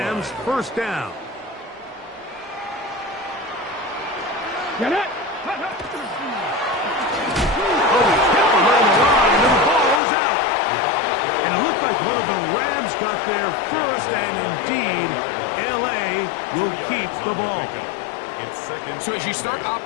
first down. Get it. Like one of the Rams got there first, and indeed, L.A. will keep the ball. So as you start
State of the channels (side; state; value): right; drops out; at 10.0 s